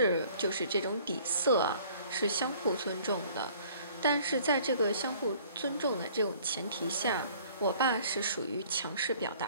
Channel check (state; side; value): inverted; both; correlation -0.54